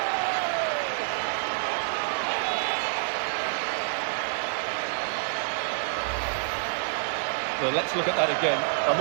Well, let's look at that again. I'm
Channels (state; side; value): silent; left; digital silence